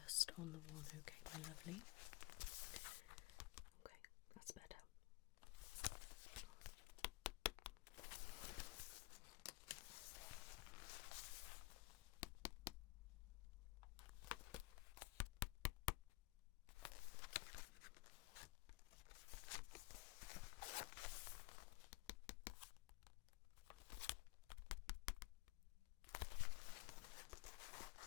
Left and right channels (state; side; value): quieter; right; 22.3 dB